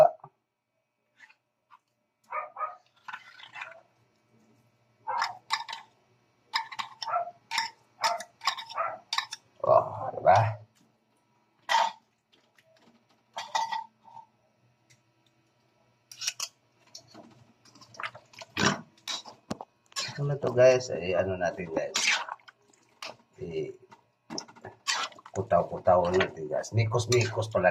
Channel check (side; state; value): both; identical; correlation 1.00